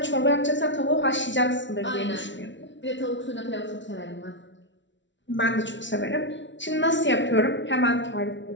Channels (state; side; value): late; right; 0.54 ms